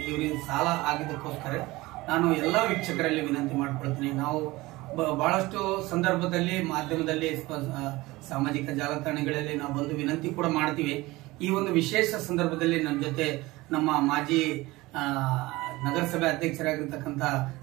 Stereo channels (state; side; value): quieter; left; 20.3 dB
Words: ಇವರಿಗೆ ಸಾಲ ಆಗಿದ್ದಕ್ಕೋಸ್ಕರ ನಾನು ಎಲ್ಲಾ ವೀಕ್ಷಕರಲ್ಲಿ ವಿನಂತಿ ಮಾಡ್ಕೊಳ್ತೀನಿ. ನಾವು ಬಹಳಷ್ಟು ಸಂದರ್ಭದಲ್ಲಿ ಮಾಧ್ಯಮದಲ್ಲಿ, ಸಾಮಾಜಿಕ ಜಾಲತಾಣಗಳಲ್ಲಿ ನಾವು ಬಂದು ವಿನಂತಿ ಕೂಡ ಮಾಡ್ತೀವಿ. ಈ ಒಂದು ವಿಶೇಷ ಸಂದರ್ಭದಲ್ಲಿ ನನ್ನ ಜೊತೆ ನಮ್ಮ ಮಾಜಿ ನಗರಸಭೆ ಅಧ್ಯಕ್ಷರಾಗಿರ್ತಕ್ಕಂಥ